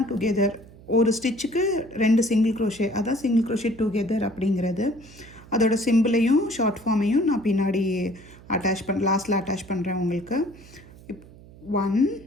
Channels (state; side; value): noise; right; hum, 21 dB below the sound